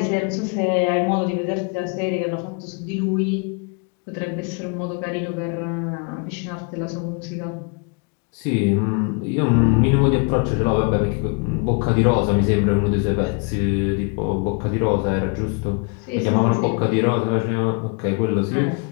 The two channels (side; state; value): right; quieter; 34.8 dB